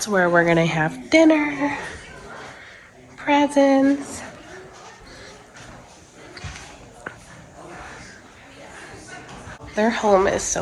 where we're gonna have dinner, presents. Their home is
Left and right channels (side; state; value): both; identical; correlation 1.00